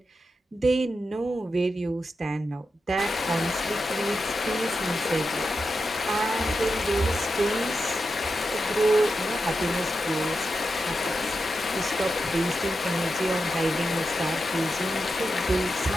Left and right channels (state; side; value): normal; both; correlation 0.88